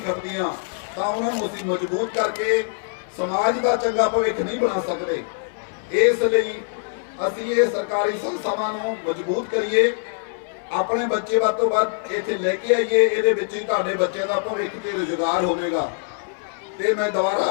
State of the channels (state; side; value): silent; right; 61 dB below the other